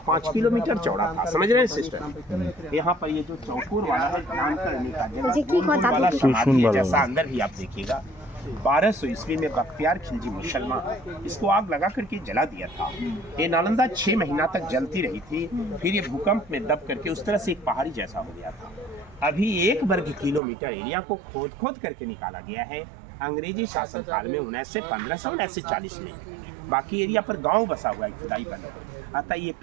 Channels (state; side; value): drops out; left; at 20.4 s